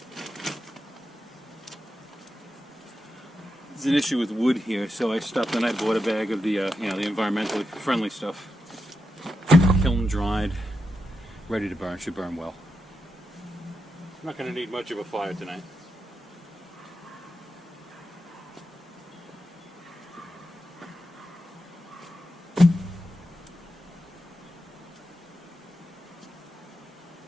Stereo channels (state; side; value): normal; both; correlation 0.87